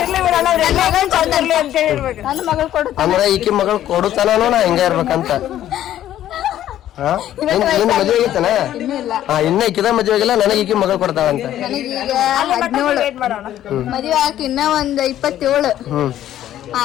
ನನ್ನ ಮಗಳು ಕೊಡು ಅಂದ್ರೆ ಈಕಿ ಮಗಳು ಕೊಡುತ್ತಾನೋ ನಾ ಹಿಂಗ ಇರ್ಬೇಕಂತ. ನಿನ್ ಮದ್ವೆ ಆಗೈತನ? ಇನ್ನ ಈಕಿದ ಮದ್ವೆ ಆಗಿಲ್ಲ. ನನಗೆ ಈಕಿ ಮಗಳು ಕೊಡ್ತಾವಂತ. ನನಗೀಗ 17 ಮದ್ವೆ ಆಗಿ ಇನ್ನ ಒಂದ್ 27.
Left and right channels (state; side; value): quieter; right; 12.2 dB